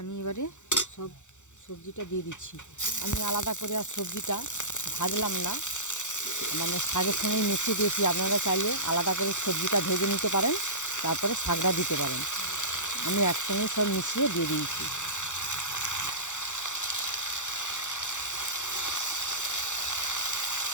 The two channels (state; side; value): late; right; 0.85 ms